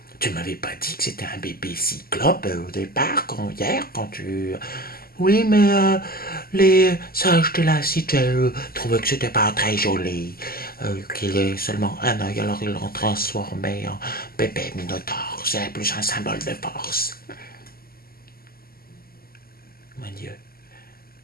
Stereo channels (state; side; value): late; right; 0.43 ms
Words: tu m'avais pas dit que c'était un bébé cyclope au départ, hier, quand tu... Oui, mais les sages de la cité trouvaient que c'était pas très joli, qu'il ait seulement un œil, alors ils l'ont transformé en bébé minotaure. C'est plus un symbole de force. Mon Dieu,